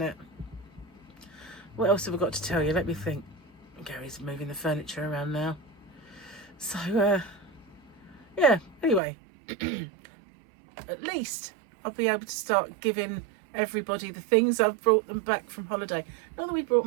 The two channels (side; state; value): left; drops out; at 9.0 s